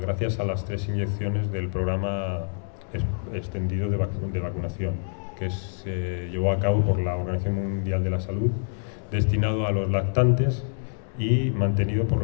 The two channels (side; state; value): right; silent; digital silence